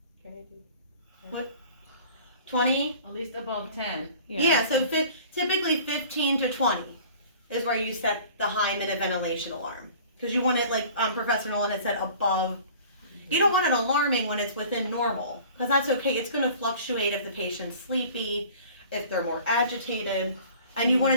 Can I do 20? At least above 10. Yeah, so typically 15 to 20 is where you set the high minute ventilation alarm. Because you want it, like Professor Nolan had said, above. You don't want it alarming when it's within normal. Because that's okay. It's going to fluctuate if the patient's sleepy, if they're more agitated. And you want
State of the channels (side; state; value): both; inverted; correlation -0.46